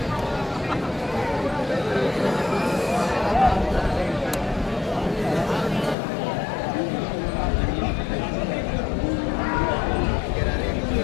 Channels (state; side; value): drops out; right; at 6.0 s